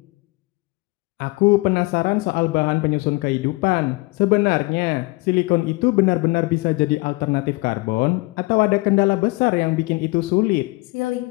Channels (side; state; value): right; quieter; 24.8 dB